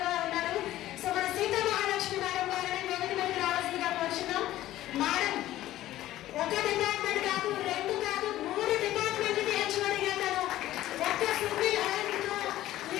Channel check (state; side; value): quieter; right; 14.5 dB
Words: ఉన్నారు. సో మన సీతా మహాలక్ష్మి మేడం గారిని వేదిక మీదకి రావాల్సిందిగా కోరుచున్నాం. మేడం ఒక డిపార్ట్మెంట్ కాదు, 2 కాదు, 3 డిపార్ట్మెంట్కి హెచ్ఓడిగా తను ఒక్క సింగిల్ హ్యాండ్ తో